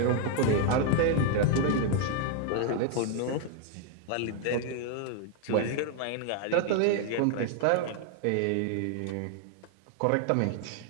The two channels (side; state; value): both; different; correlation 0.00